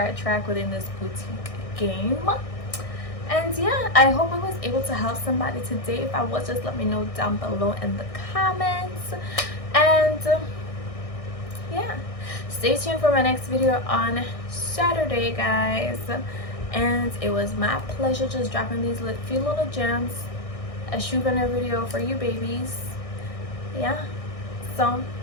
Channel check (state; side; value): late; right; 1.6 ms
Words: track within this boutique game. And yeah, I hope I was able to help somebody today. If I was, just let me know down below in the comments. And yeah, stay tuned for my next video on Saturday, guys. And it was my pleasure just dropping these few little gems, a shoe vendor video for you babies. Yeah, so